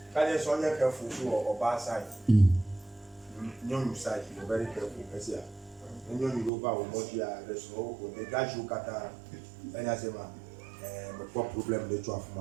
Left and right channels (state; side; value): drops out; left; at 6.5 s